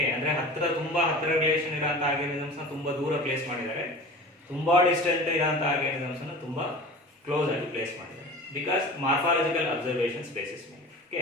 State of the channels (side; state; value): both; normal; correlation 0.37